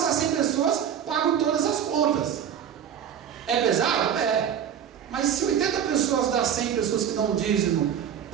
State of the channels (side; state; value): left; quieter; 8.7 dB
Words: 100 pessoas pagam todas as contas. É pesado? É. Mas se 80 pessoas das 100 pessoas que dão dízimo